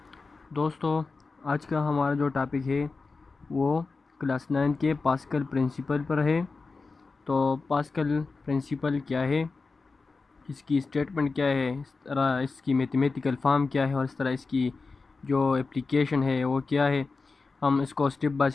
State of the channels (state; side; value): quieter; right; 4.1 dB